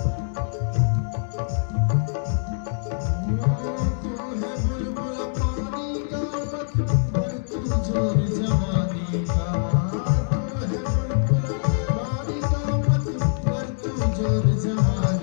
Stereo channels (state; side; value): silent; right; digital silence